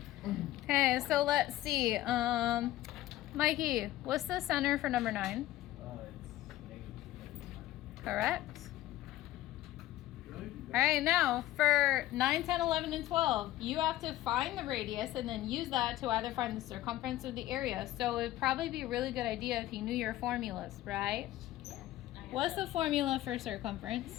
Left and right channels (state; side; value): quieter; right; 15.0 dB